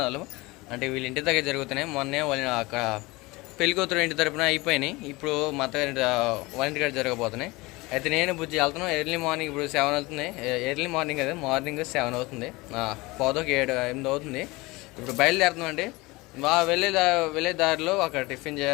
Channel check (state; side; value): quieter; right; 22.8 dB